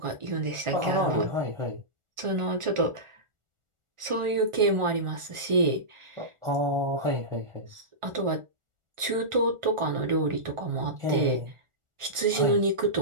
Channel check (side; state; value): left; late; 1.4 ms